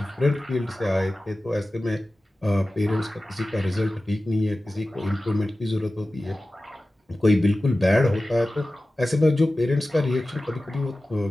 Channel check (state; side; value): normal; both; correlation 0.95